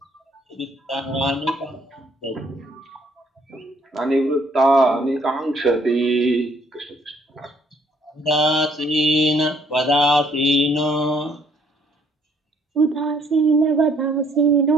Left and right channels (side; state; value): both; normal; correlation 0.64